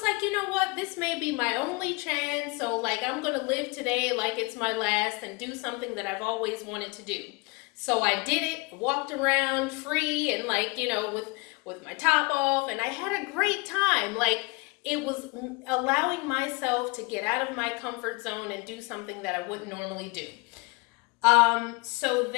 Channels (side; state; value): right; quieter; 26.7 dB